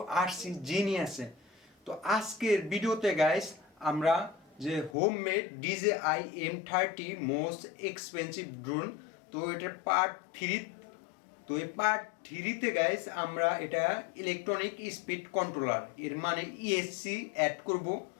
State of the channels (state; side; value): drops out; right; at 5.0 s